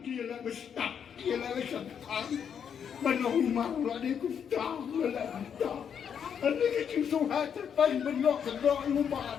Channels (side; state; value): right; quieter; 7.8 dB